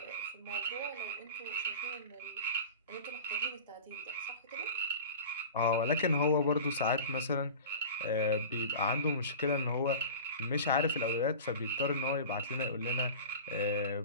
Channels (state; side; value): inverted; both; correlation -0.36